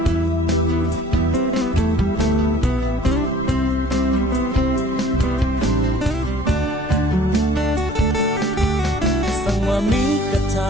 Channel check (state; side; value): normal; both; correlation 0.52